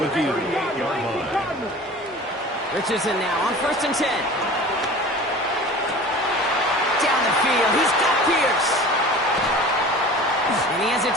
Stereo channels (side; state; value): both; normal; correlation 0.40